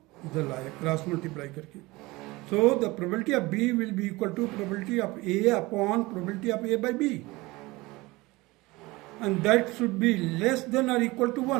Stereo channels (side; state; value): left; quieter; 21.7 dB